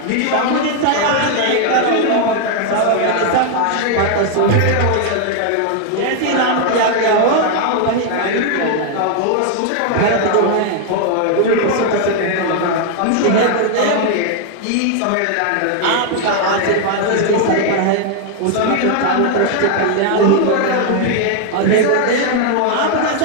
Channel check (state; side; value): different; both; correlation 0.00